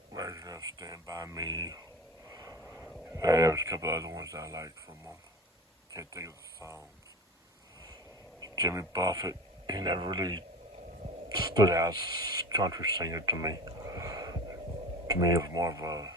of Stand By Me. There's a couple other ones I like from him. Can't think of the songs. Jimmy Buffett, he never really stood out as a country singer to me. To me, it was more of a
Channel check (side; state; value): both; normal; correlation 0.34